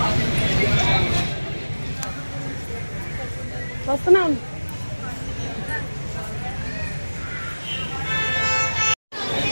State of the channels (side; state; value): both; inverted; correlation -1.00